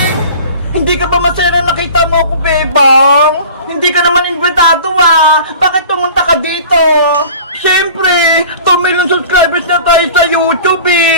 Hindi ka ba masaya na nakita mo ako, Bebang? Hindi ka naman imbitado Bakit pumunta ka dito? Siyempre, 2 million subscribers na tayo sa YouTube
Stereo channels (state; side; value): inverted; both; correlation -0.42